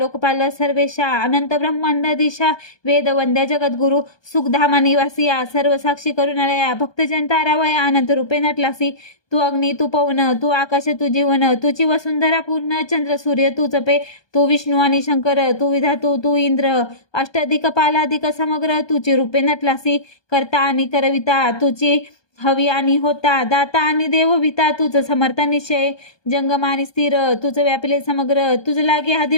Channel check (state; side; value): late; right; 1.2 ms